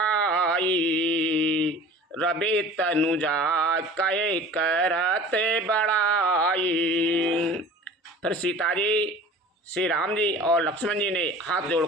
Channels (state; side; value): normal; both; correlation 0.42